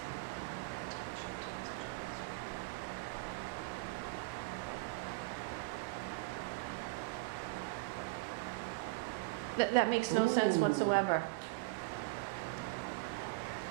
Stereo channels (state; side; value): quieter; left; 24.0 dB